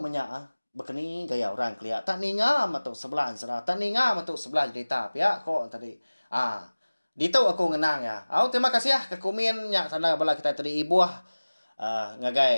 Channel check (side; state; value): both; inverted; correlation -1.00